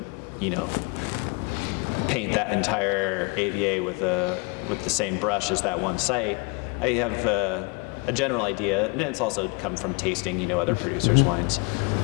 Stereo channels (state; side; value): quieter; right; 30.6 dB